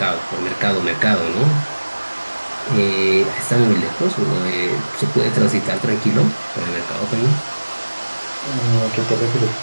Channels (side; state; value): both; inverted; correlation -1.00